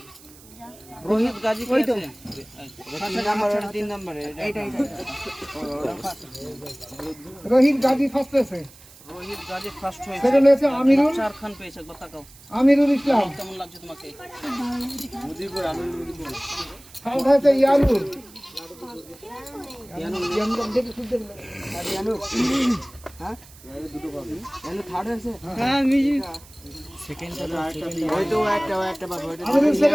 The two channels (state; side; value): noise; right; hiss, 22 dB below the sound